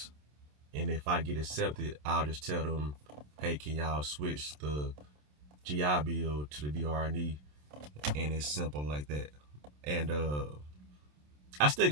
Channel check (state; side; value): late; left; 27 ms